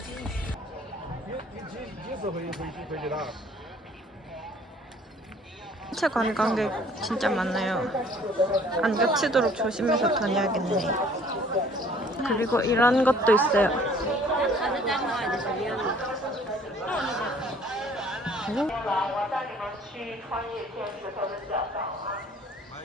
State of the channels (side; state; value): both; normal; correlation 0.55